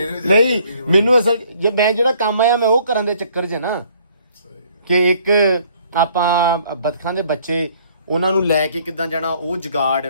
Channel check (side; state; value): both; inverted; correlation -0.61